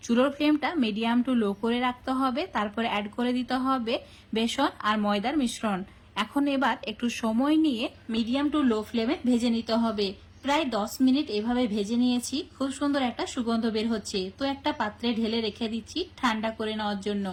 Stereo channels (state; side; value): identical; both; correlation 1.00